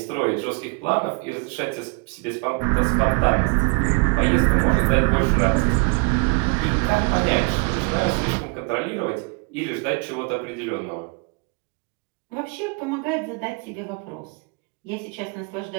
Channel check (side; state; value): left; quieter; 32.9 dB